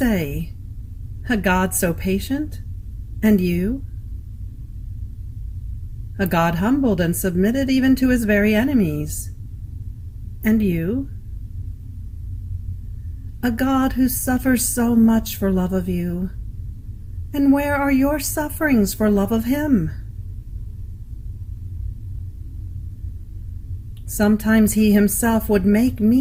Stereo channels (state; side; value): identical; both; correlation 1.00